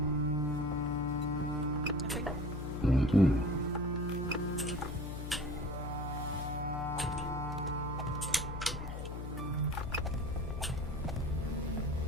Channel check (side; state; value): left; noise; hum, 6 dB below the sound